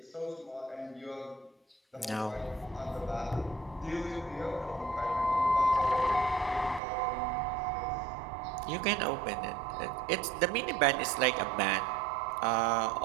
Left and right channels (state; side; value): drops out; left; at 6.8 s